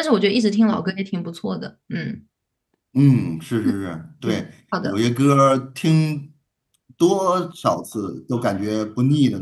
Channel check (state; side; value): identical; both; correlation 1.00